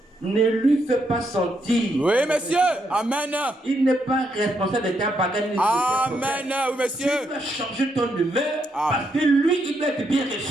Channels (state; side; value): normal; both; correlation 0.78